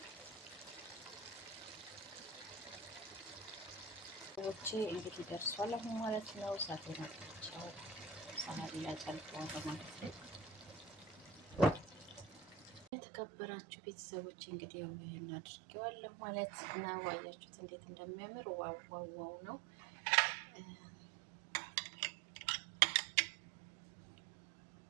እንግዲህ ደርሷል አሁን ማለት ነው። እሳቴን አጥፍቼው ሳህን ላይ ጨልፈዋለሁ ማለት ነው። የተከበራችሁ ቤተሰቦች እንግዲህ ያው ይሄን አድርጌዋለሁ ማለት ነው። አያችሁት እንዴት እንደሚያምር ዋው ዋው ዋው ነው።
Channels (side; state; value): left; drops out; at 12.9 s